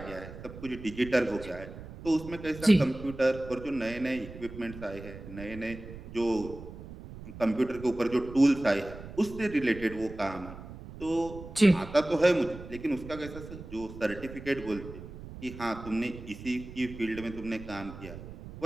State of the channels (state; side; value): noise; right; rumble, 13 dB below the sound